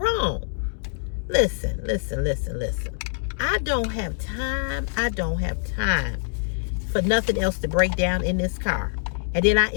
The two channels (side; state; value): right; silent; digital silence